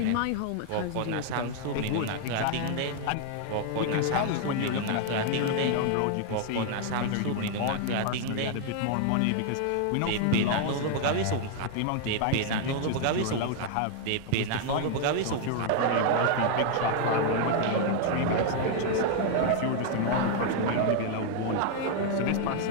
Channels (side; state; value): both; different; correlation 0.00